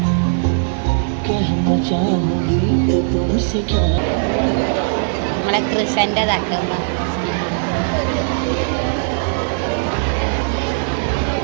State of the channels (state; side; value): silent; left; digital silence